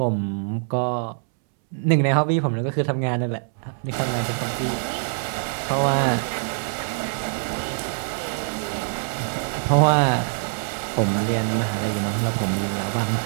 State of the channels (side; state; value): left; silent; 63 dB below the other